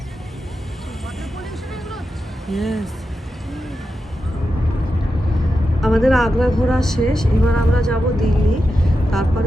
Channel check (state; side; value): normal; both; correlation 0.89